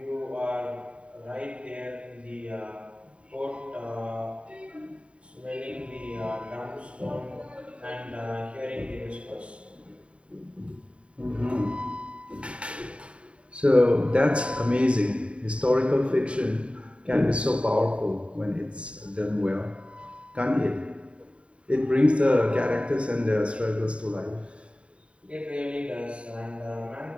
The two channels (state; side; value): late; left; 0.060 ms